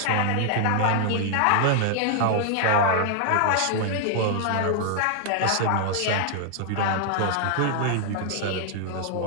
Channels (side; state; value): both; different; correlation 0.00